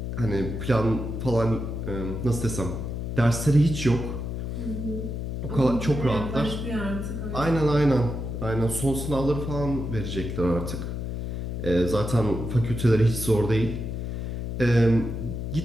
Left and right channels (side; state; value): left; noise; hum, 4 dB below the sound